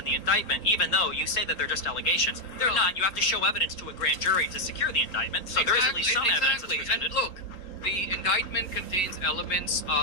the indictment, even though you say that they're just allegations. They're not. You have to show evidence to a grand jury to secure the indictment, so there is at least some evidence that's presented. And look, the indictment contains elements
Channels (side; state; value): right; late; 3.8 ms